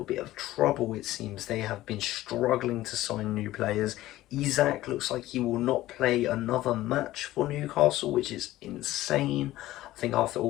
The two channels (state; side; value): quieter; right; 15.8 dB